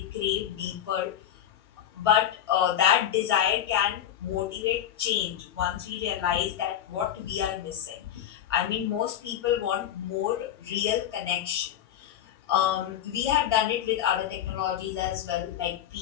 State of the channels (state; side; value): quieter; right; 10.7 dB